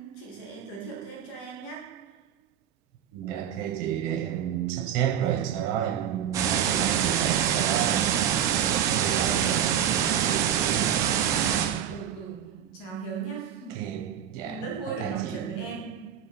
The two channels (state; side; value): quieter; left; 9.3 dB